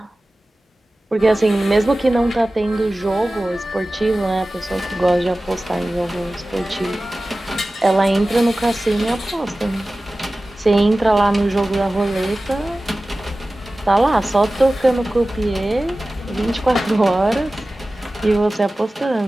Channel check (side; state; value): both; normal; correlation 0.96